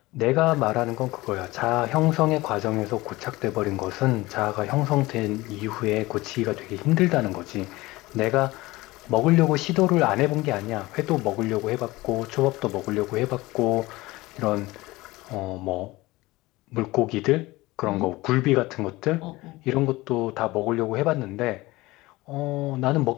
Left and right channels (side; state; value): right; quieter; 20.1 dB